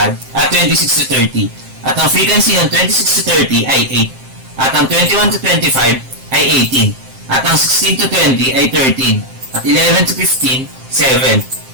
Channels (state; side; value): late; left; 7.6 ms